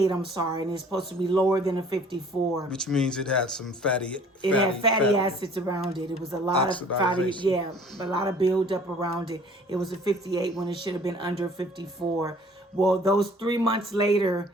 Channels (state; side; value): normal; both; correlation 0.52